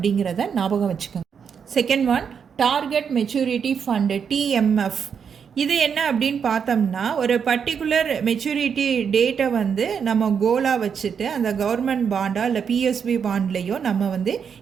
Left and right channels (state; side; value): quieter; left; 6.9 dB